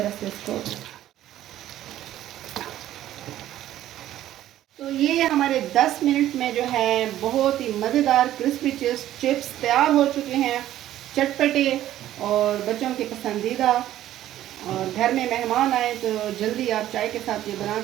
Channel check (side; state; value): left; quieter; 13.0 dB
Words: से इसको। तो ये हमारे 10 मिनट में जो है बहुत ही मज़ेदार क्रिस्पी चिप्स तैयार हो चुके हैं, चटपटे और बच्चों के पसंदीदा। और घर में मेहमान आए तो जल्दी आप चाय के साथ ये बना